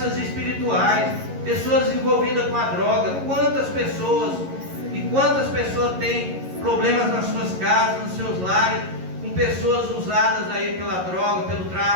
espirituais. Pessoas envolvidas com a droga. Quantas pessoas têm problemas nas suas casas, nos seus lares, com pessoas usadas aí pela droga, pelo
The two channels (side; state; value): left; late; 11 ms